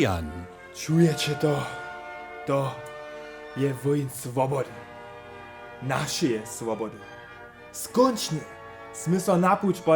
Čujecie to? To je woń swobody. Naszej swobody. Skończnie sme so napuć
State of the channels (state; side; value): identical; both; correlation 1.00